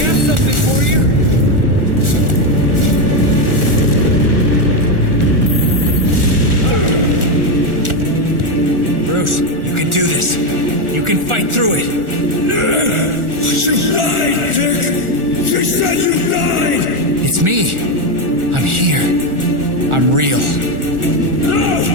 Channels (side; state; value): left; late; 1.4 ms